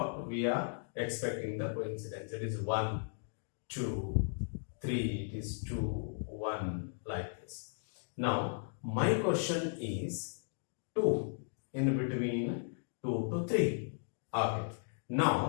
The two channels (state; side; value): silent; right; digital silence